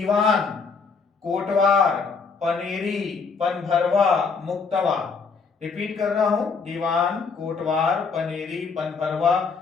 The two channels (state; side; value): quieter; right; 5.1 dB